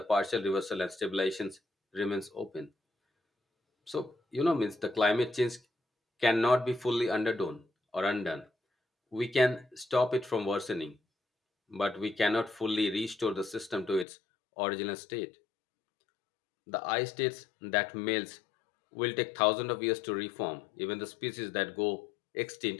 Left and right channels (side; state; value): right; drops out; at 14.1 s